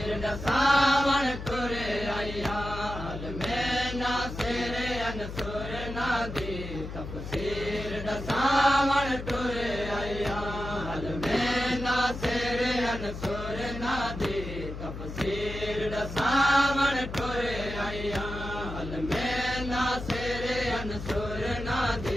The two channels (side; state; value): left; noise; hum, 9 dB below the sound